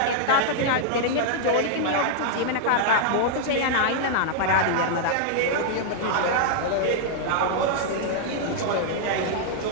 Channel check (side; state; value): both; different; correlation -0.01